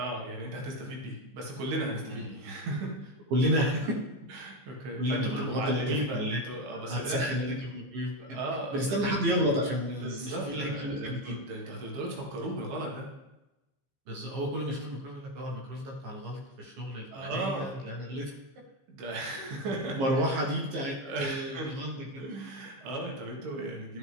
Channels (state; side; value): late; left; 15 ms